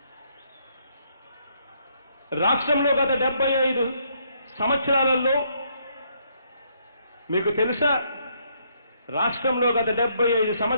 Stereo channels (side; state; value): both; inverted; correlation -0.72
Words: రాష్ట్రంలో గత 75 సంవత్సరాలలో మీకు తెలుసా, రాష్ట్రంలో గత